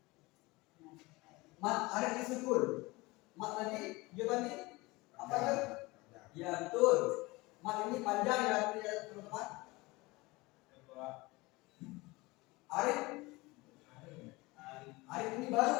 Mat ada di sukun. Mat tadi jawabannya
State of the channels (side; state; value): right; quieter; 22.6 dB